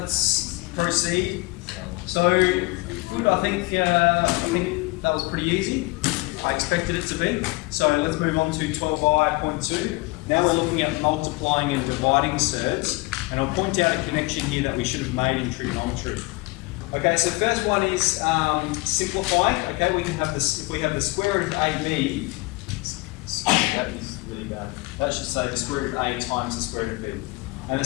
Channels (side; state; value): right; quieter; 23.7 dB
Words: let's proceed. So, good, I think that was pretty easy. I expected it to be. So let's move on to 12i.2. Now we're looking at multiplying and dividing surds, and I'll point out a connection here that we should have made in trigonometry. Okay, so first one is simplifying. Okay, we can have this, if we have the square root of AB, that is really bad. That should say the square root of A times the square root of B. And the